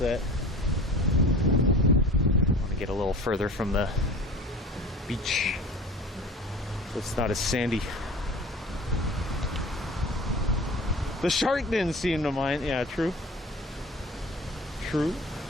I want to get a little further from the beach so it's not as sandy. The shark didn't seem to mind. Yeah, true. True.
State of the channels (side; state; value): both; normal; correlation 0.40